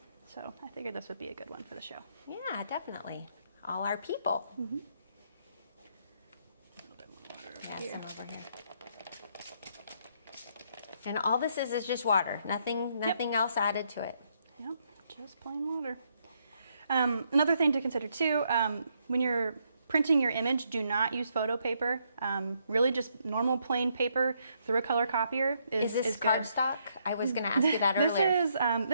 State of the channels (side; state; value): both; inverted; correlation -0.74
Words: So I figured this would be a good one for the show. Yeah, definitely. All our people. Yeah, some over here. And all this is just water. Nothing else added to it. Yep, just plain water. Another thing to consider too, when you're printing your image, do not use photo paper. Really just normal plain paper through a color copier is this good. cardstock? I was going to ask you that earlier.